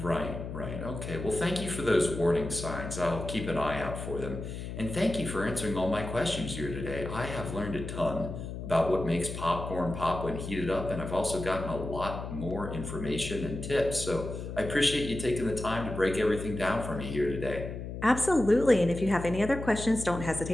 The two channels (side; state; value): left; noise; hum, 7 dB below the sound